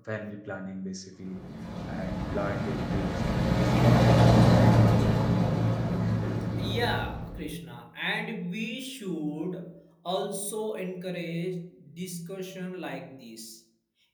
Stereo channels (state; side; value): identical; both; correlation 1.00